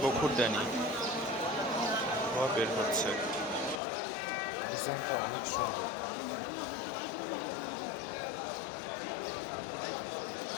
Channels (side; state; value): right; drops out; at 3.8 s